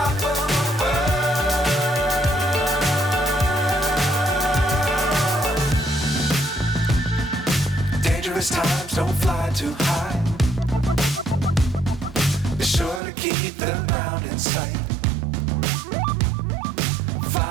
Times don't fly too high. Be sure to keep the ground in sight.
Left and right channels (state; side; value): drops out; left; at 13.0 s